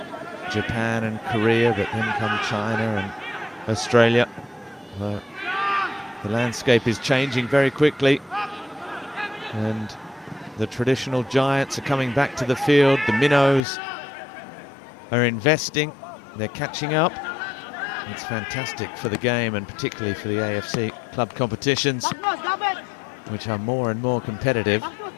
Japan and Korea, but then come China and Australia. The landscape is changing very quickly, and the traditional giants are coming back to the field. The minnows are investing, they're catching up. It's fantastic for the game, and particularly for the AFC club competitions, which are more and more competitive.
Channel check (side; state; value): right; drops out; at 13.6 s